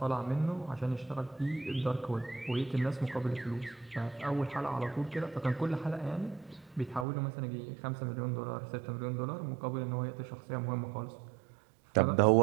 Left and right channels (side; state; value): left; drops out; at 7.1 s